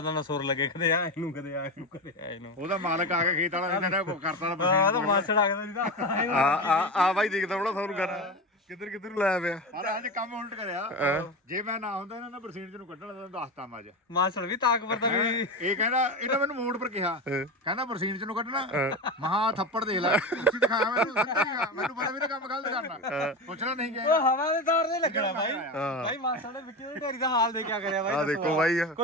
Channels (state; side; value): normal; both; correlation 0.22